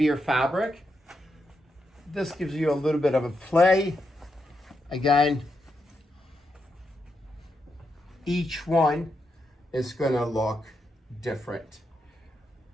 fabric. This gives you a little bit of a play. Again, each one is going to look different.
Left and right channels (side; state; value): both; normal; correlation 0.83